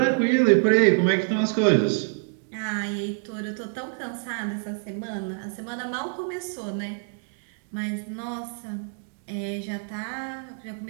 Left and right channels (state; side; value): silent; left; 61 dB below the other